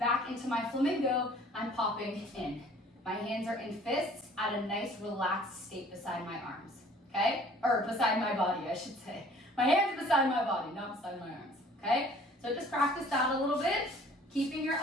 into my flamingo, I'm popping in. My hands are in fists at a nice relaxed state beside my arms, okay? Or beside my body, I should say. My hands are beside my body, not beside my arms, okay? So just practice that a little bit, keeping your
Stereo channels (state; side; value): normal; both; correlation 0.53